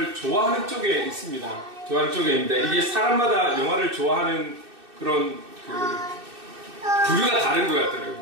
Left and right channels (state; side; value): late; left; 2.6 ms